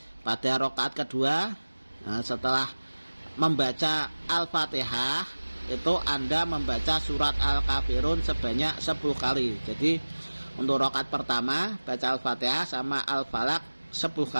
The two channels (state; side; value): inverted; both; correlation -1.00